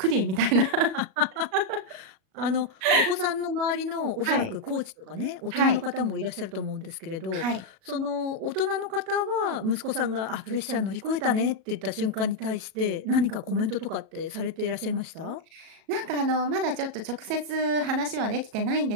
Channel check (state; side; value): late; left; 37 ms